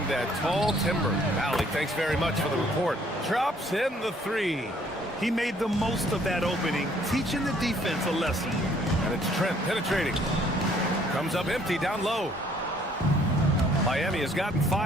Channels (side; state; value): both; normal; correlation 0.62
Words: that tall timber. Allie, thanks very much for the report. Drops in the three. He made the most of that opening, teaching the defense a lesson. And it's Trent penetrating. Comes up empty down low. Miami has gotten